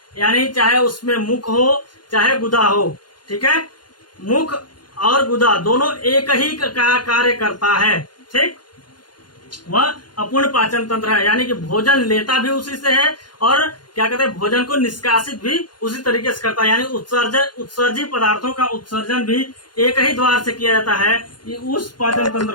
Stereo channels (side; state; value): right; late; 0.71 ms